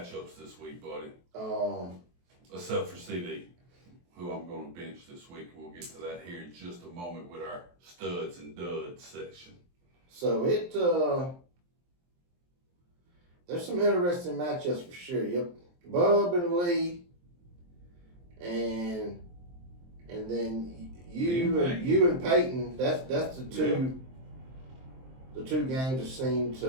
this week, buddy. Except for CD, who I'm going to bench this week. We'll get to that here in just a moment with our studs and duds section. So there's some interesting matchups for sure. Yep, Bub and Lee, and then you and Peyton. That's the two. The two games that seem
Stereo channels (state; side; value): late; left; 23 ms